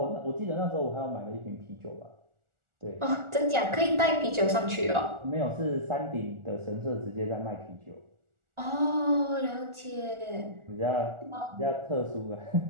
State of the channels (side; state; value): left; late; 1.4 ms